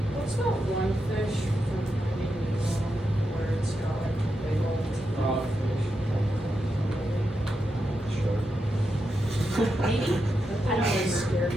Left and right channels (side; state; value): both; normal; correlation 0.86